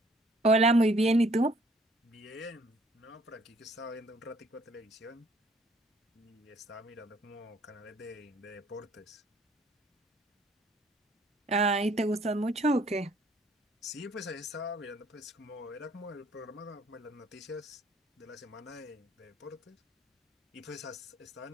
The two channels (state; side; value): normal; both; correlation 0.61